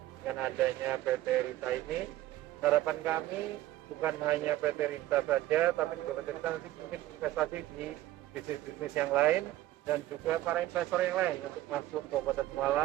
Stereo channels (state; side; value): quieter; left; 15.2 dB